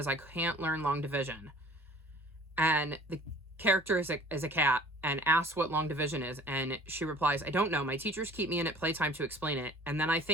I can't learn long division." And the character is a cat and asks what long division is, and she replies, "I don't know. My teachers keep me in at playtime to explain it, and then I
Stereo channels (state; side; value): normal; both; correlation 0.48